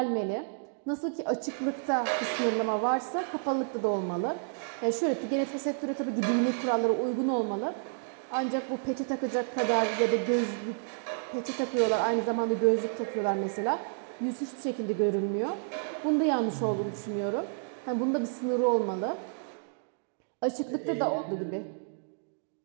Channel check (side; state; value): left; silent; digital silence